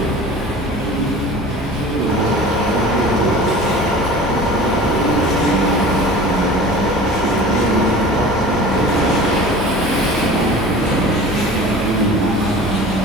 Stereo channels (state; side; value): normal; both; correlation 0.40